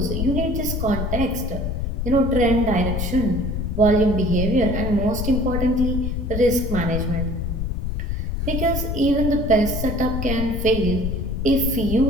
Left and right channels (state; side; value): noise; left; rumble, 2 dB below the sound